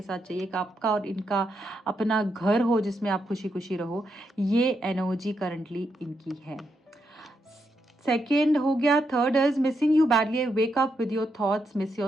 साथ चाहिए, एक आपका और इनका अपना घर हो जिसमें आप खुशी खुशी रहो, ये एनर्जी करंटली इनकी है। सेकेंड हो गया। Third is missing you badly, wake up with your thoughts, miss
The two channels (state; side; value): normal; both; correlation 0.81